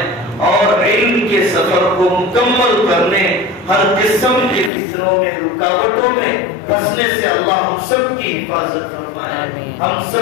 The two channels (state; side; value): drops out; right; at 4.7 s